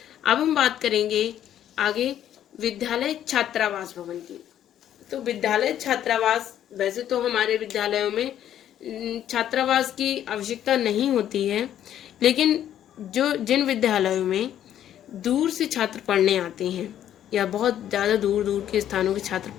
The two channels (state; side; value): quieter; right; 10.9 dB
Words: अब हम बात करेंगे आगे विद्यालय छात्रावास भवन की। तो विद्यालय छात्रावास, वैसे तो हमारे विद्यालयों में छात्रावास की आवश्यकता नहीं होती है, लेकिन जिन विद्यालयों में दूर से छात्र पढ़ने आते हैं या बहुत ज़्यादा दूर दूर के स्थानों के छात्र